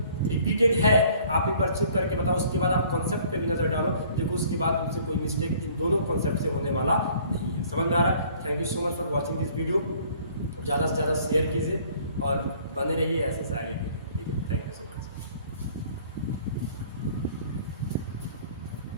रिपीटेड है, आप एक बार चेक करके बताओ, उसके बाद आप कॉन्सेप्ट पे भी नजर डालो, देखो उसके बाद तुमसे कोई मिस्टेक इन दोनों कॉन्सेप्ट से होने वाला नहीं है। समझ में आ रहा है? Thank you so much for watching this video. ज़्यादा से ज़्यादा शेयर कीजिए और बने रहिए ऐसे साइड। ठीक है, थैंक यू।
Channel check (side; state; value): both; inverted; correlation -0.55